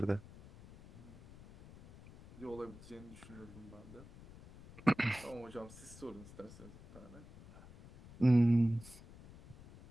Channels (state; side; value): noise; left; rumble, 18 dB below the sound